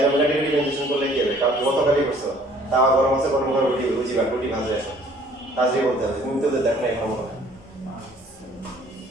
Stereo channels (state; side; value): normal; both; correlation 0.56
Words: ওমেগা t ডিফারেন্সিয়েশন করলে কি হবে? কারণ কত কালি করছো, তাওয়া গরম আছে, গরম করে রুটি বুঝিবা, রুটি ভাজে আসো, কাজে বলতে হবে। তুমি তো দেখো না এখন মনে হয়।